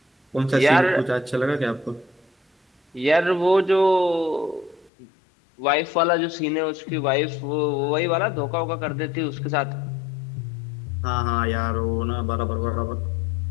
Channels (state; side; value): drops out; right; at 4.9 s